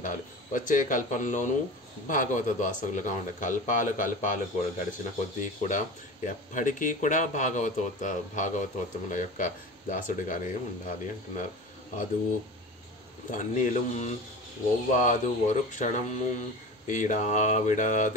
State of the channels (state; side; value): normal; both; correlation 0.34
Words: వచ్చే కల్పంలోనూ భాగవత దాసులుగా ఉండాలి. కల్పాలు కూడా గడిచిన కొద్దీ కూడా ఎప్పటికీ కూడా భాగవతోత్తముల యొక్క దాసుడిగానే ఉండాలి అంటున్నారు. అదు తన్నిலும் ఒవ్వాదు ఒరు క్షణము ఈడా